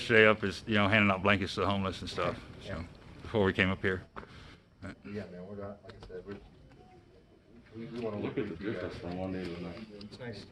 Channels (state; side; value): identical; both; correlation 1.00